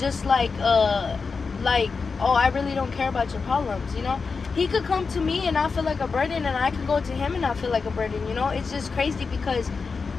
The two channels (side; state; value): right; quieter; 4.8 dB